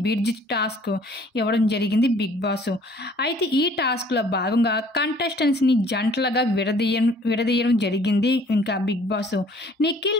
బ్రిడ్జ్ టాస్క్ ఇవ్వడం జరిగింది బిగ్ బాస్. అయితే ఈ టాస్క్లో భాగంగా కంటెస్టెంట్స్ని జంటలుగా విడదీయడం జరిగింది. ఇంకా బిగ్ బాస్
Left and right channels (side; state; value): both; normal; correlation 0.56